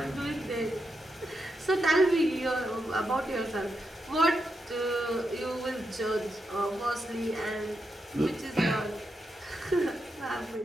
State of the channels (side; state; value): both; normal; correlation 0.85